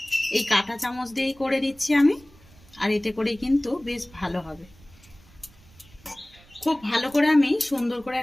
এই কাঁটা চামচ দিয়েই করে দিচ্ছি আমি, আর এতে করেই কিন্তু বেশ ভালো হবে। খুব ভালো করে আমি সুন্দর করে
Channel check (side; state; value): right; noise; rumble, 26 dB below the sound